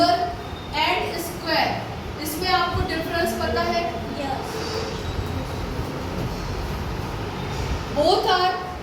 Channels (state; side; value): identical; both; correlation 1.00